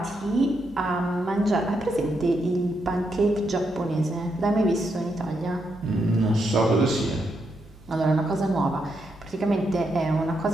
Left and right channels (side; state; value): right; noise; hum, 24 dB below the sound